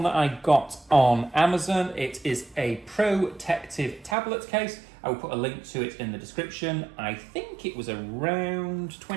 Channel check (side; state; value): left; drops out; at 4.2 s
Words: that I got on Amazon. It is a protective tablet case. I will put a link to it in the description. I think it was around